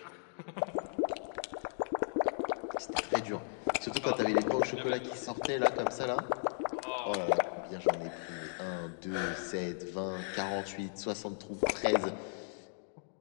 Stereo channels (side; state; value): right; silent; 54 dB below the other